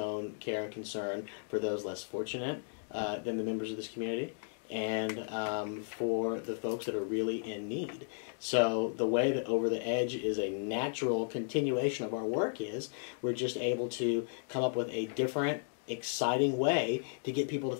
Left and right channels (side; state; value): right; silent; digital silence